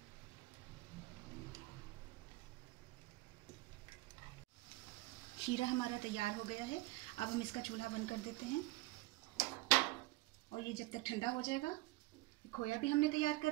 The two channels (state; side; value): quieter; left; 20.4 dB